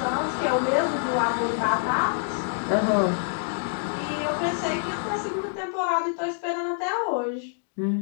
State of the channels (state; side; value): silent; right; digital silence